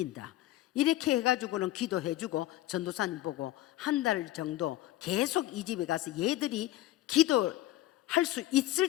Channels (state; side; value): quieter; right; 15.1 dB